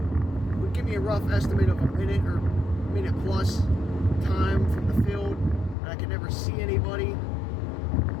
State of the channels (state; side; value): drops out; right; at 5.8 s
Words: would give me a rough estimate of a minute or minute plus time from the field, and I could never see anybody.